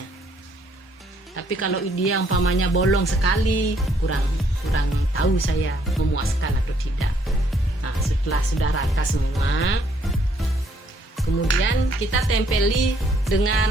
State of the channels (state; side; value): normal; both; correlation 0.67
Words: Tapi kalau dia umpamanya bolong sekali, kurang tahu saya memuaskan atau tidak. Nah, setelah sudah rata semua, kemudian kita tempeli